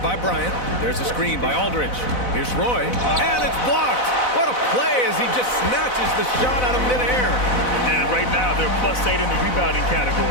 by Bryant. There's a screen by Aldridge. Here's Roy, and it's blocked. What a play as he just snatches the shot out of midair. And right now, they're +8 in the rebounding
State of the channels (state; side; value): late; right; 4.0 ms